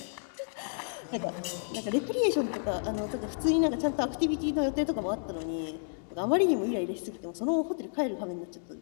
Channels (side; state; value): right; silent; 57 dB below the other